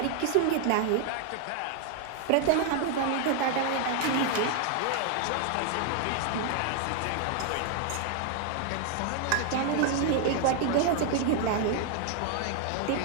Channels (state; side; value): different; both; correlation 0.00